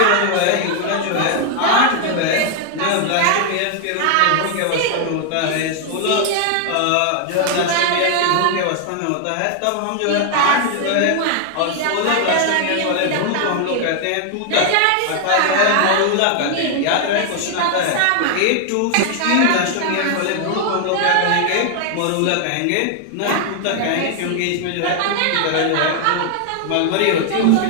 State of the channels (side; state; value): both; different; correlation 0.00